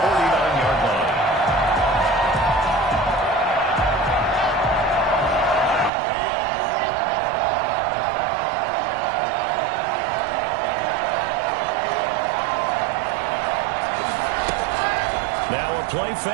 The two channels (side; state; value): left; drops out; at 5.9 s